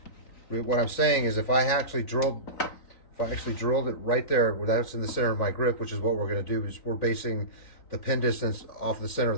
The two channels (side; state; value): right; late; 3.9 ms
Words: line. What I'm saying is if I actually drilled it right there, where that's in the center of my grip, which is what we're gonna do, is we're basing the pin distance off the center